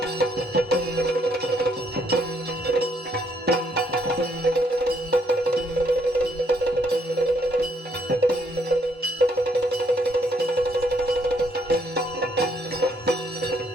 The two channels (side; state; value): both; normal; correlation 0.70